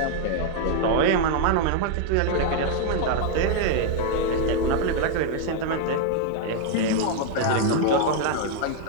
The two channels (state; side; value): different; both; correlation 0.00